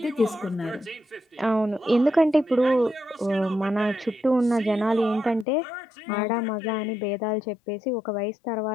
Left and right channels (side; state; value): right; drops out; at 5.5 s